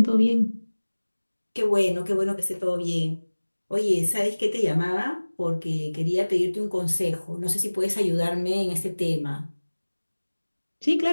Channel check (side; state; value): both; inverted; correlation -1.00